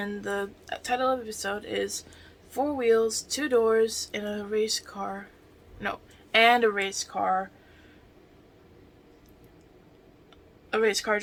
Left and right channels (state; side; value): identical; both; correlation 1.00